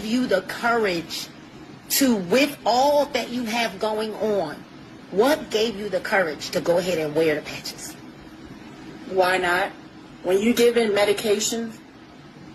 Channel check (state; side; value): identical; both; correlation 1.00